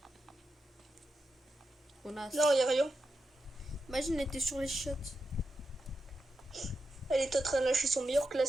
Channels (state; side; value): normal; both; correlation 0.88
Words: Connasse. Non, y a rien. Imagine, elle était sur les shots. Elle est en train de lâcher son meilleur